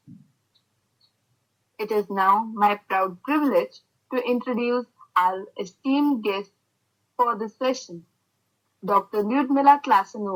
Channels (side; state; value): both; identical; correlation 1.00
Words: It is now my proud privilege to introduce our esteemed guest for this session, Dr. Lyudmila